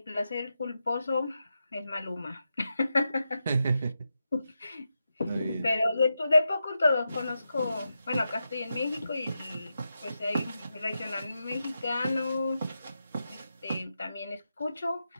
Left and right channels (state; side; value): inverted; both; correlation -0.88